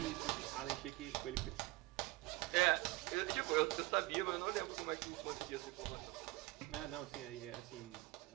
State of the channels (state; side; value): quieter; left; 20.7 dB